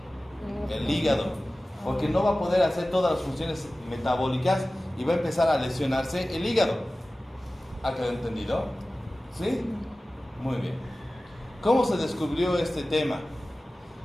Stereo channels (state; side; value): normal; both; correlation 0.96